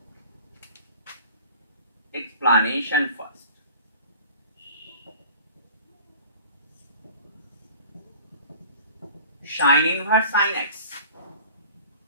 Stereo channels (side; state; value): both; inverted; correlation -0.44